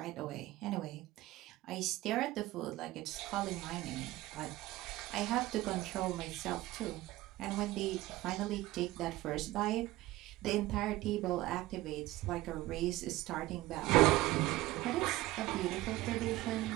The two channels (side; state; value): left; quieter; 17.7 dB